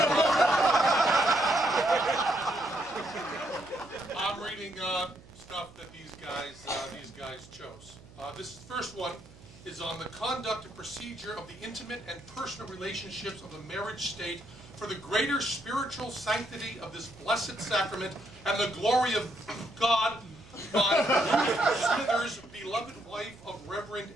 I'm reading stuff that these guys chose. This first one is on the conduct and procedure of the intimate and personal relationships of the marriage state for the greater spiritual sanctity of this blessed sacrament and the glory of God by Ruth Smithers, beloved wife of Reverend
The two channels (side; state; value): right; noise; hum, 22 dB below the sound